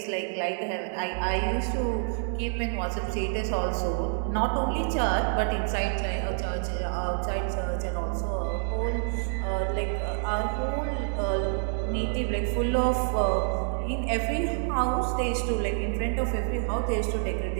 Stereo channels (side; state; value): left; silent; digital silence